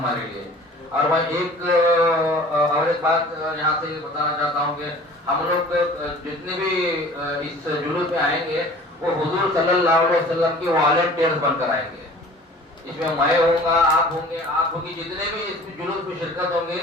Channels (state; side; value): normal; both; correlation 0.46